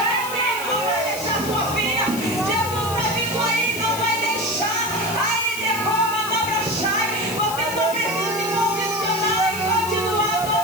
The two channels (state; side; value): noise; left; hiss, 9 dB below the sound